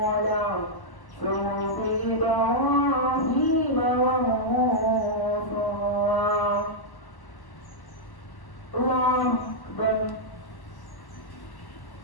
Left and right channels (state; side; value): late; right; 1.1 ms